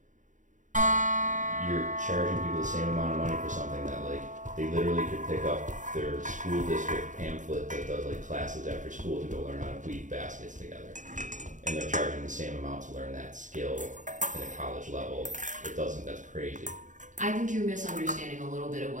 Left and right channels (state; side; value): late; left; 0.36 ms